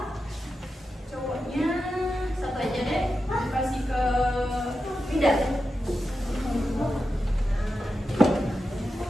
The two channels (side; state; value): both; normal; correlation 0.90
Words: cowoknya 1 aja deh. Ibu kasih ke Winda.